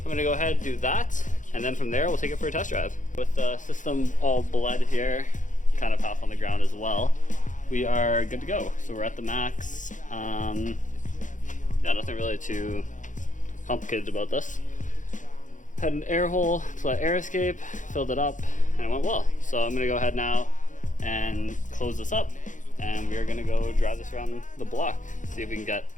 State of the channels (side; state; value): right; late; 0.37 ms